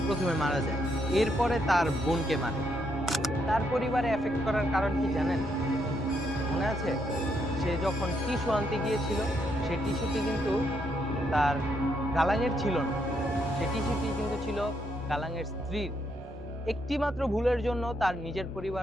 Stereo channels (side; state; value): both; normal; correlation 0.76